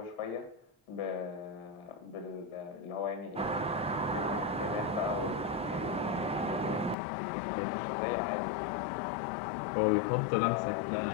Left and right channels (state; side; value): drops out; right; at 7.0 s